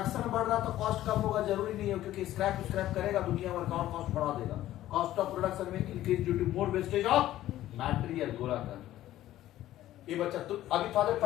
बढ़ रहा तो कॉस्ट कम होगा जरूरी नहीं है, क्योंकि स्क्रैप करेगा दुनिया भर का और कॉस्ट बढ़ा देगा। कॉस्ट ऑफ प्रोडक्शन में increase due to more wastage of material. गोला कर ये बच्चा तो अभी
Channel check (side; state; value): right; quieter; 13.9 dB